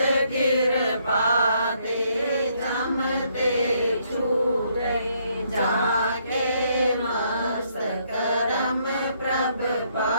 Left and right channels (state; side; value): inverted; both; correlation -0.71